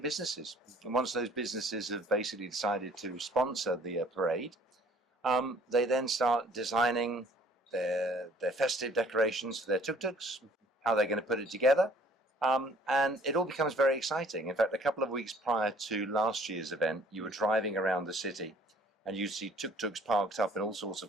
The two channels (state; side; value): normal; both; correlation 0.56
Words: businesses. And once those businesses have basically decided to sponsor the parade, they then start designing their festive decorations for their tuk-tuks, how they're going to put it together. And it all becomes very exciting. In fact, a couple of weeks prior to last year's event, you were driving around the city and you see tuk-tuks parked up in all sorts